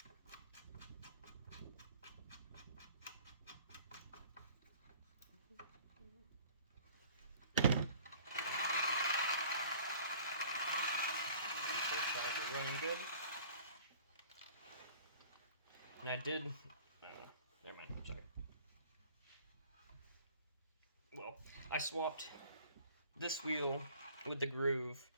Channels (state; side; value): inverted; both; correlation -0.50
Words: And I did, no, never mind, sorry. Well, I swapped this wheel with the groove